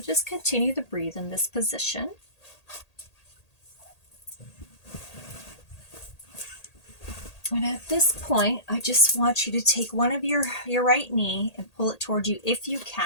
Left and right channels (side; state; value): right; late; 1.8 ms